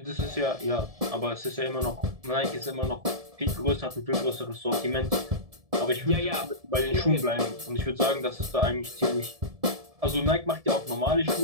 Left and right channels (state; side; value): late; left; 1.7 ms